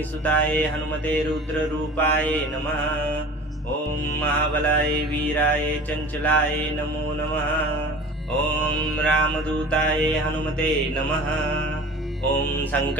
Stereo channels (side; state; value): both; normal; correlation 0.40